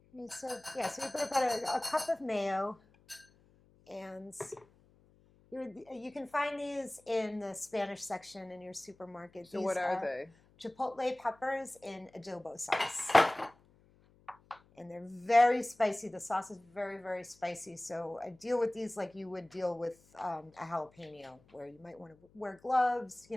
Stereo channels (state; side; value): noise; left; hum, 29 dB below the sound